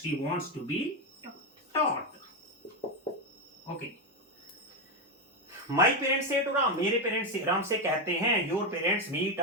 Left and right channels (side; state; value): both; normal; correlation 0.08